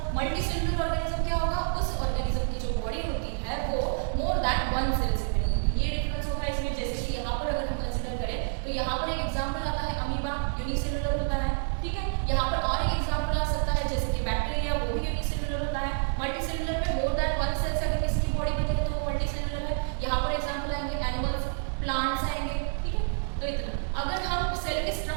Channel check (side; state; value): left; silent; digital silence